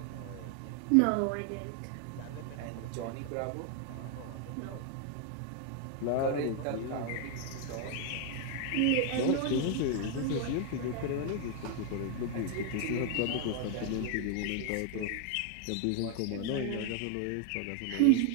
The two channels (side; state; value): both; different; correlation 0.00